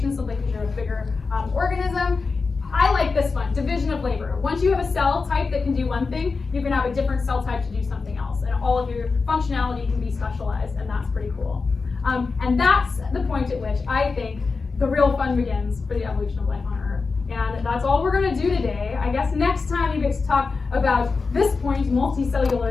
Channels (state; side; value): quieter; right; 4.4 dB